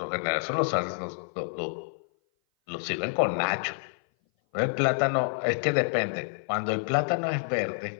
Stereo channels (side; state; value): right; silent; 57 dB below the other